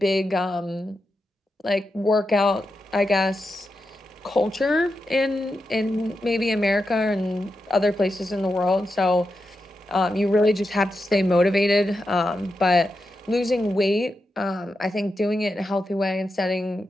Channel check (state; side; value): normal; both; correlation 0.88